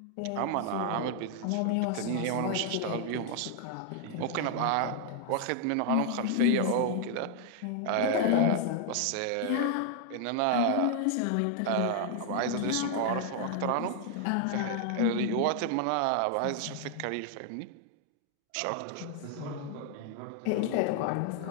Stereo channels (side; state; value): both; different; correlation 0.00